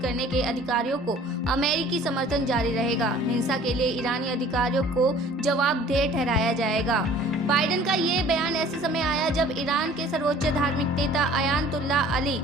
करने के अधिकारियों को अमेरिकी समर्थन जारी रहेगा। हिंसा के लिए ईरानी अधिकारियों को जवाबदेह ठहराया जाएगा। बाइडेन का ये बयान ऐसे समय आया जब ईरान के सर्वोच्च धार्मिक नेता अयातुल्लाह अली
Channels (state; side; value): normal; both; correlation 0.50